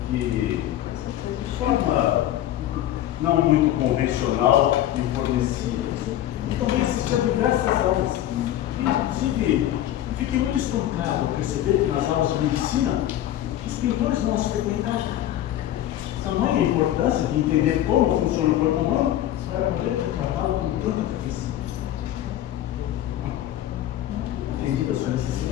que, de forma não muito convencional, me fornecia. E também assistia a diversas aulas. Inclusive, eu fiquei muito espantado ao perceber que nas aulas de medicina, os pintores não as frequentavam. Tamanha importância de entender como funciona o corpo humano para poder retratá-lo com tanta perfeição. Entendi a sua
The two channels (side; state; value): right; quieter; 12.7 dB